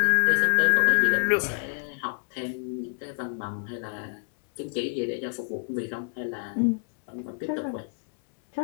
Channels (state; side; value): silent; right; digital silence